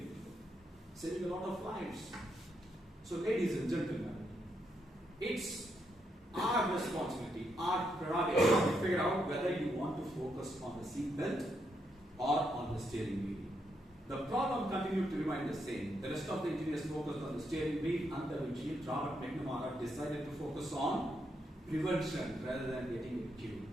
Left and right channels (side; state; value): both; normal; correlation 0.79